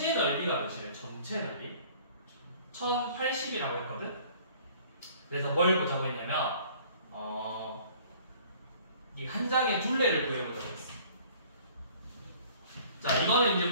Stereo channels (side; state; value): both; inverted; correlation -0.53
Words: 넓이가 몇이래? 전체 넓이? 1080이라고 했거든? 그래서 뭘 보자고 했냐면 이 한 장의 둘레를 구해보자고 했어. 자, 이거는 이제